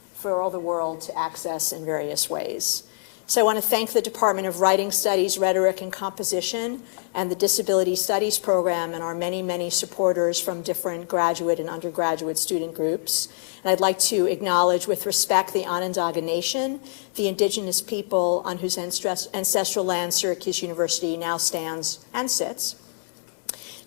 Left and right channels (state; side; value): silent; right; digital silence